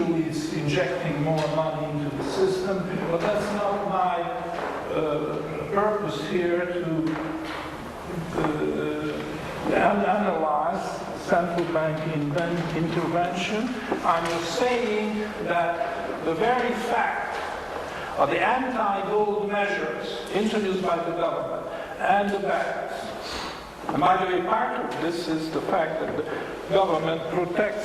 it's injecting more money into the system, but that's not my purpose here to analyze central bank intervention. I'm just saying that the very fact of the anti-gold measures introduced by the government and the banks, and by the way, part of this is the fact that the government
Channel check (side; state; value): both; identical; correlation 1.00